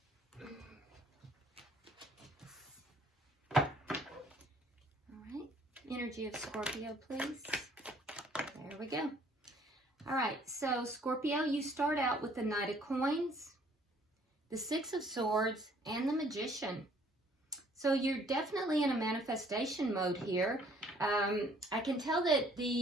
All right, energy of Scorpio, please. There we go. All right, so Scorpio, you start out with the Knight of Coins, the Six of Swords, and the Magician. So you're definitely in a manifestation mode here. I can tell that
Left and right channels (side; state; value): both; normal; correlation 0.60